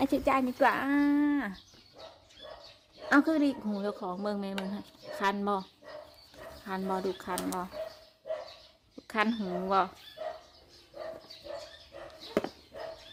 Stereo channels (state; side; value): identical; both; correlation 1.00